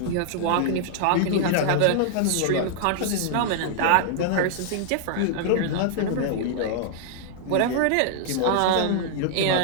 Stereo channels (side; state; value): both; different; correlation -0.01